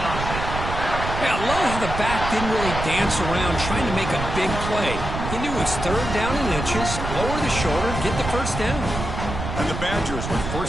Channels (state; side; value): noise; right; rumble, 5 dB below the sound